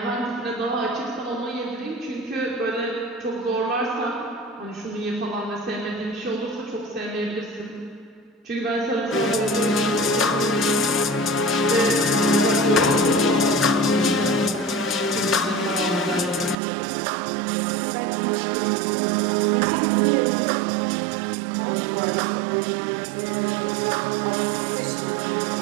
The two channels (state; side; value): drops out; left; at 16.6 s